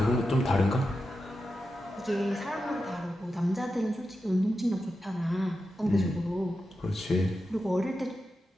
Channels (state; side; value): normal; both; correlation 0.90